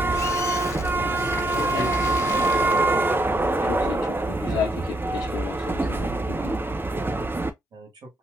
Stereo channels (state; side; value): normal; both; correlation 0.75